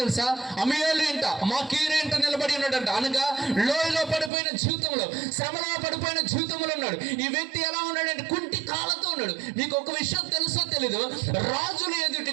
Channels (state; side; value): drops out; left; at 4.3 s